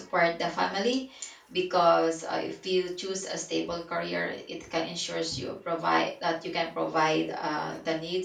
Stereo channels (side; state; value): both; identical; correlation 1.00